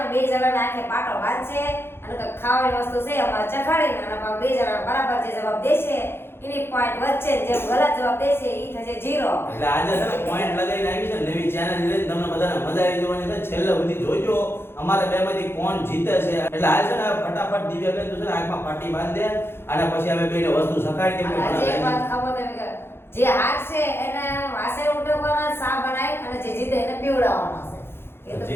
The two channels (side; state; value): right; late; 0.11 ms